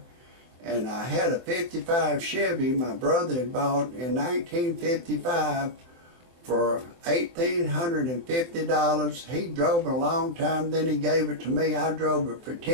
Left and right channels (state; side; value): late; left; 24 ms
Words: and I had a 55 Chevy my brother had bought in 1955 for $1,850. He drove it a long time, then he gave it to me. I drove it for